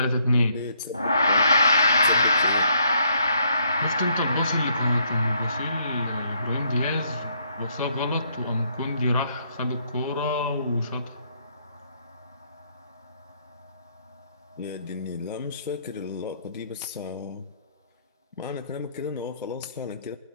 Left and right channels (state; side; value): inverted; both; correlation -0.70